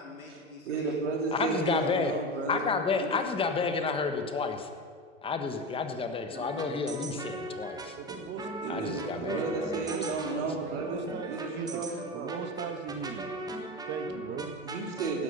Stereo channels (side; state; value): both; normal; correlation 0.23